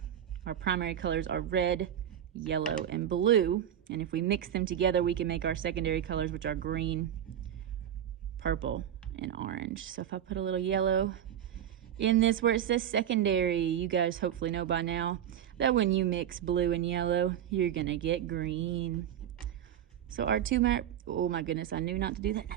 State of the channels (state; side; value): quieter; left; 10.2 dB